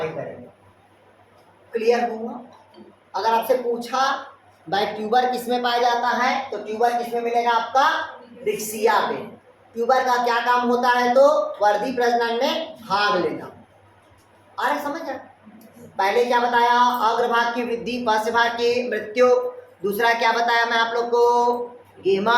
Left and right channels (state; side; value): identical; both; correlation 1.00